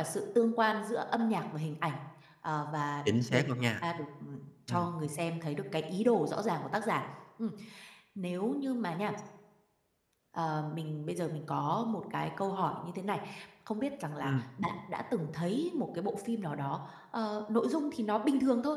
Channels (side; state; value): both; identical; correlation 1.00